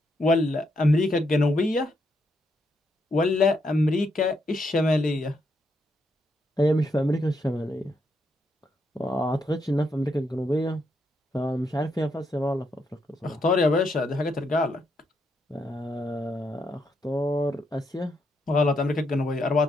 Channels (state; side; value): normal; both; correlation 0.78